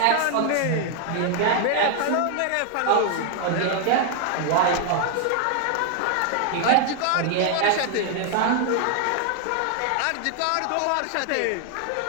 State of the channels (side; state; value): both; different; correlation 0.00